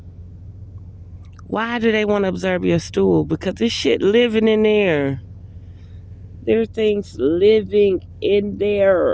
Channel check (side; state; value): both; identical; correlation 1.00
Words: Why do they want to observe your stool? Because this shit living in there. There are things living in